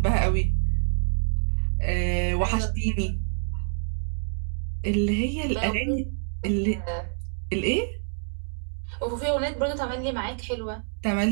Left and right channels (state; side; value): silent; left; digital silence